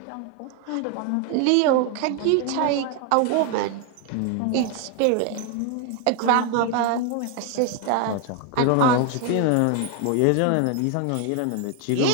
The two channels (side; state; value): both; different; correlation 0.01